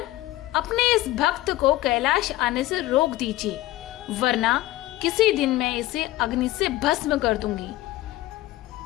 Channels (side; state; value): right; quieter; 16.7 dB